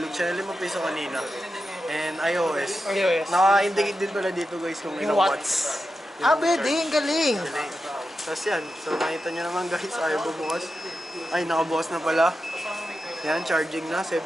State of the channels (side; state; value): both; normal; correlation 0.90